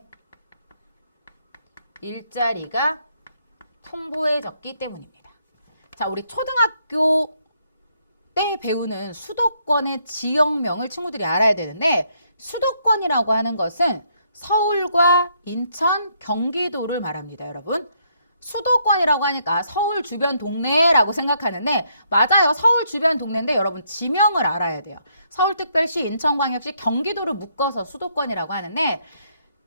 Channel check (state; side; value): inverted; both; correlation -0.73